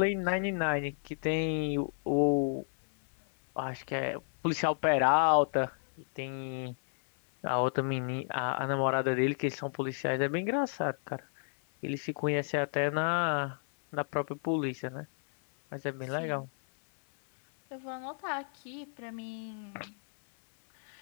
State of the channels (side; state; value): right; silent; 56 dB below the other